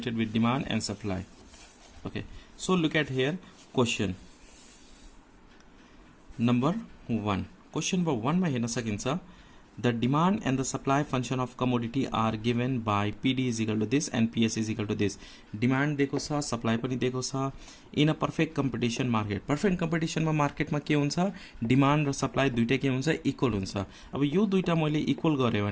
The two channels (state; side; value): identical; both; correlation 1.00